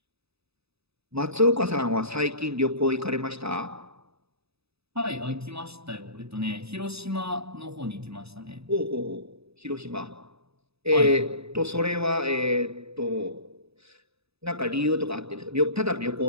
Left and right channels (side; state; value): left; late; 0.78 ms